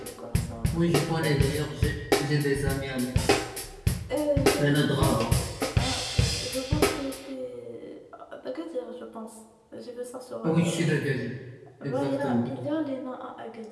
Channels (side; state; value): both; identical; correlation 1.00